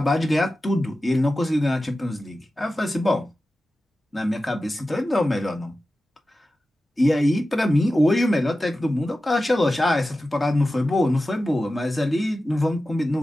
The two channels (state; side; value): normal; both; correlation 0.94